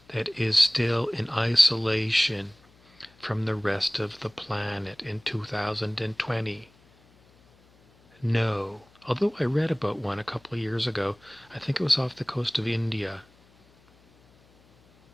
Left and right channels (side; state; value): left; noise; hum, 30 dB below the sound